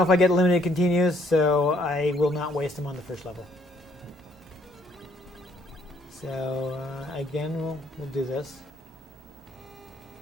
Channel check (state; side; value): normal; both; correlation 0.66